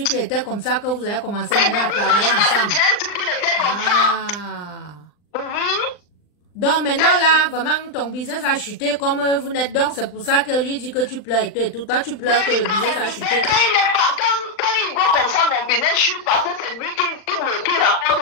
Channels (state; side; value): late; right; 39 ms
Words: qu'il était comme ça que vous avez commencé maintenant à travailler ensemble. J'ai su qu'il était comme ça. Donc maintenant là, vraiment ton business a chuté comme vous n'êtes donc, c'est pour ça que lui dit que tu pleures et tout. Toi tu pleures que le business a chuté. Quand il voit comme ça mon business chute parce que c'est lui qui